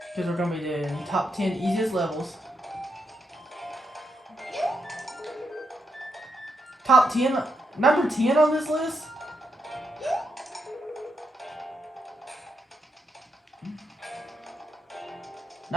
Because we're going to be doing top 10 easiest levels. Top 10, number 10 on this list?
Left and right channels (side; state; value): both; normal; correlation 0.82